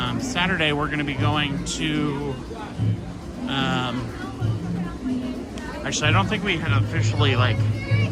Saturday we're going to be going to... actually, I don't think we had officially like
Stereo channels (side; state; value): both; identical; correlation 1.00